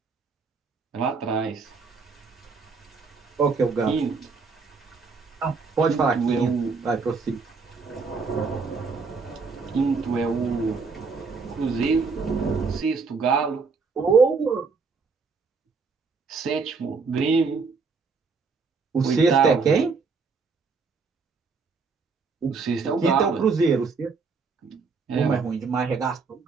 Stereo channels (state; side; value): quieter; left; 4.7 dB